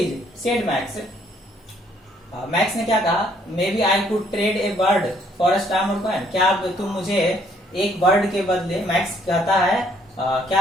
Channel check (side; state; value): both; normal; correlation 0.65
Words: said Max. Max ने क्या कहा, maybe I could trade a bird for a stamp or coin. क्या तुम मुझे एक बर्ड के बदले, मैक्स कहता है क्या